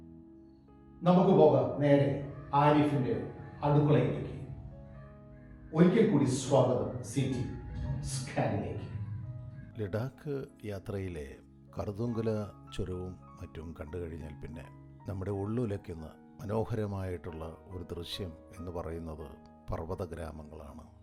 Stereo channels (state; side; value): identical; both; correlation 1.00